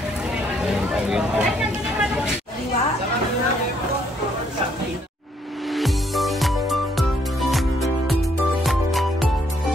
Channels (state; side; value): normal; both; correlation 0.69